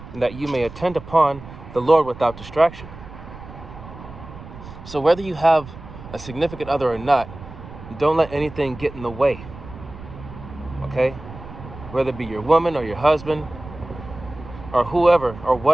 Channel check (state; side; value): noise; right; rumble, 15 dB below the sound